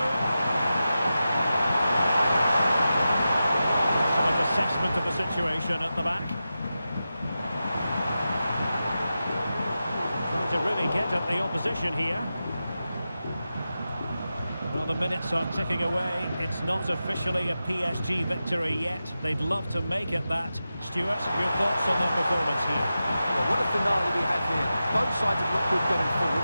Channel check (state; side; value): inverted; both; correlation -0.92